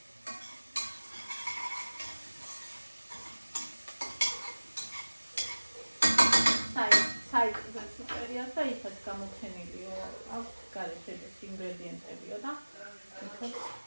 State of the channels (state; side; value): inverted; both; correlation -1.00